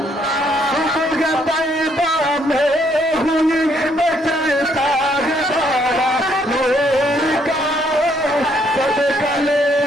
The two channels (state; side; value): normal; both; correlation 0.69